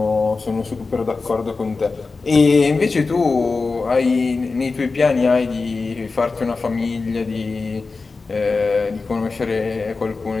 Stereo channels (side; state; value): right; quieter; 4.1 dB